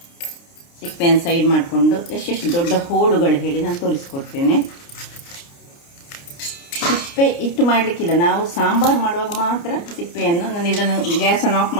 ಸಿಪ್ಪೆಯನ್ನು ಸೈಡ್ ಮಾಡಿಕೊಂಡು ಎಷ್ಟೆಷ್ಟು ದೊಡ್ಡ ಹೋಳುಗಳು ಹೇಳಿ ನಾನು ತೋರಿಸ್ಕೊಡ್ತೇನೆ. ಸಿಪ್ಪೆ ಇಟ್ಟು ಮಾಡಲಿಕ್ಕಿಲ್ಲ, ನಾವು ಸಾಂಬಾರು ಮಾಡುವಾಗ ಮಾತ್ರ ಸಿಪ್ಪೆಯನ್ನು. ನಾನು ಇದನ್ನು ಗ್ಯಾಸನ್ನು ಆಫ್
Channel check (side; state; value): right; late; 29 ms